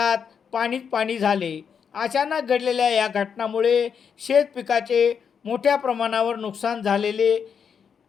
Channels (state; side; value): quieter; right; 6.9 dB